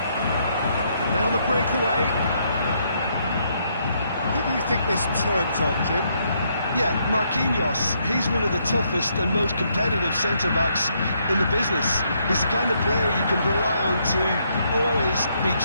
And now the breakaway. Who do you think this turns on, Jim? Yeah, Marquinhos, he's one of the toughest and most competitive centre-backs in the business. He's the kind of player you can rely on to always be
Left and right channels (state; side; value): inverted; both; correlation -0.74